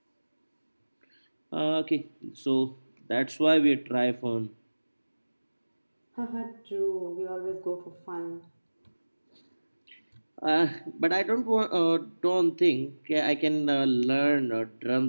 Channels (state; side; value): inverted; both; correlation -1.00